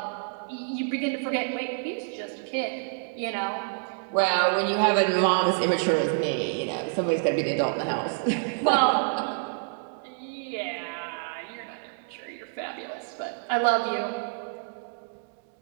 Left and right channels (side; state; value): left; silent; 60 dB below the other